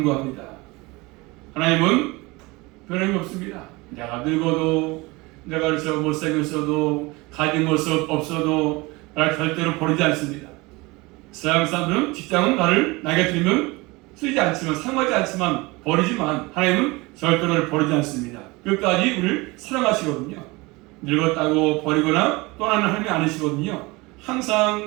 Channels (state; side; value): quieter; left; 23.7 dB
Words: 하나님은 변함이 없습니다. 내가 늙어도, 내가 그래서 못생겼어도, 가진 모습 없어도 나를 절대로 버리지 않습니다. 서양 사람들은 직장은 나에게 들면 쓰지 않지만, 사용하지 않지만 버리지만, 하나님은 절대로 나를 버리지 않습니다. 끝까지 우리를 사랑하시거든요. 늙었다고 버리거나 떠나는 하나님이 아니시거든요.